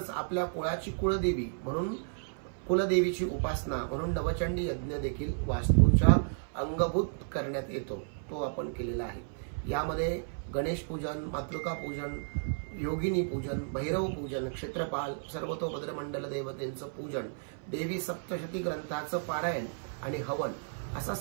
आपल्या कुळाची कुळदेवी म्हणून कुलदेवीची उपासना म्हणून नवचंडी यज्ञ देखील वास्तूच्या अंगभूत करण्यात येतो, तो आपण केलेला आहे। यामध्ये गणेश पूजन, मातृका पूजन, योगिनी पूजन, भैरव पूजन, क्षेत्रपाल, सर्वतोभद्र मंडल देवतेंचं पूजन, देवी सप्तशती ग्रंथाचं पारायण आणि हवन असा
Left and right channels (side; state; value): left; silent; 55 dB below the other